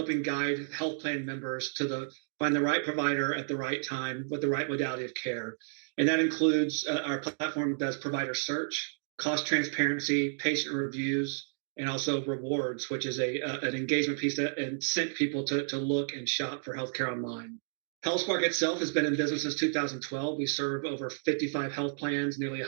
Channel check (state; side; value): silent; left; digital silence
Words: guide health plan members to find the right provider at the right time with the right modality of care. And that includes our platform does provider search, cost transparency, patient reviews, and also rewards, which is an engagement piece that incent people to look and shop for healthcare online. Healthsparq itself has been in business since 2012. We serve over 55 health plans, nearly